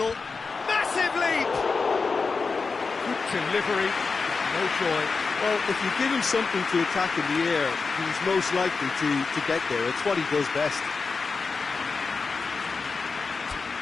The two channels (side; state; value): right; quieter; 4.6 dB